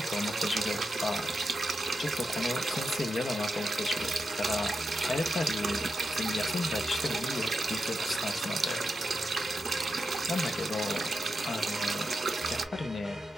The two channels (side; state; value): both; normal; correlation 0.87